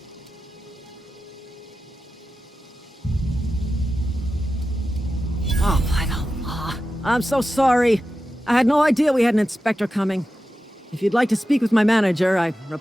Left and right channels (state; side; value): normal; both; correlation 0.92